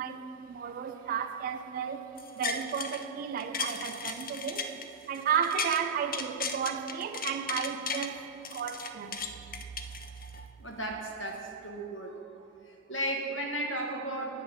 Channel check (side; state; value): left; quieter; 3.4 dB